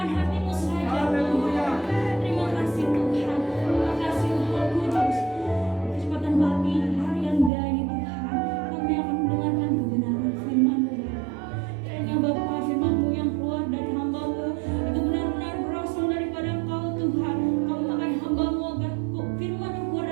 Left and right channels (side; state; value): left; drops out; at 7.5 s